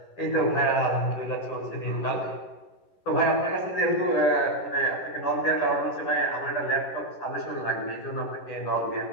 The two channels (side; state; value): right; late; 11 ms